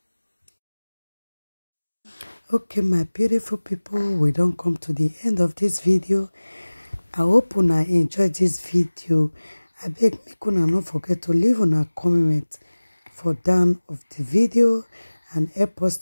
Okay, my beautiful people, we don't come to the end of this video. I hope you enjoy this video. I beg make una not forget to leave on a comment for down of the video and help us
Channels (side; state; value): both; inverted; correlation -1.00